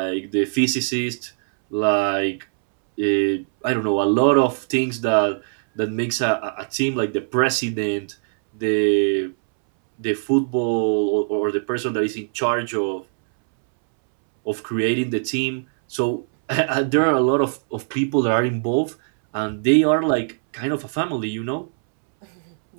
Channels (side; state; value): left; silent; 65 dB below the other